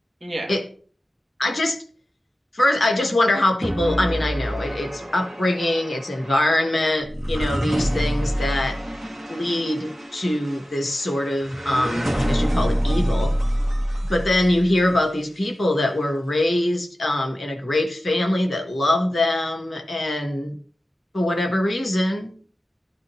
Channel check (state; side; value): normal; both; correlation 0.95